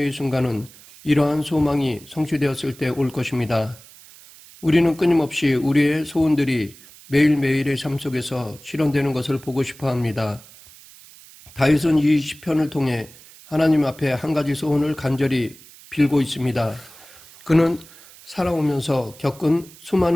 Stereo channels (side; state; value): right; noise; hiss, 22 dB below the sound